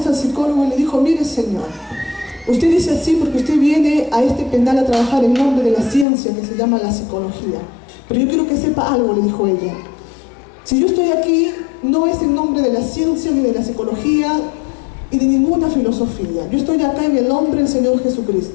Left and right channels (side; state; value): right; drops out; at 6.1 s